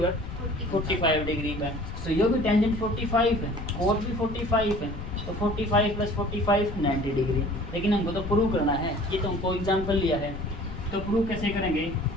45 डिग्री का, तो ये भी टेंजेंट 45 है, कोट भी 45 है, तो 45 प्लस 45 90 डिग्री। लेकिन हमको तो प्रूव करना है, ये तो हमको एग्जाम्पल लिया है, तो प्रूव कैसे करेंगे,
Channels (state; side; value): noise; left; rumble, 8 dB below the sound